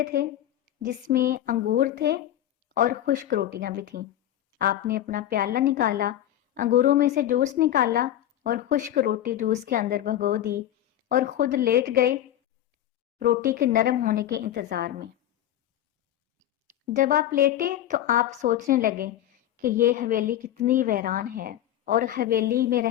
تھے جس میں انگور تھے اور خشک روٹیاں بھی تھیں۔ آپ نے اپنا پیالہ نکالا، انگوروں میں سے جوس نکالا اور خشک روٹی جوس کے اندر بھگو دی اور خود لیٹ گئے روٹی کے نرم ہونے کے انتظار میں۔ جب آپ لیٹے تو آپ سوچنے لگے کہ یہ حویلی کتنی ویران ہے اور حویلی میں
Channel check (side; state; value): right; quieter; 12.2 dB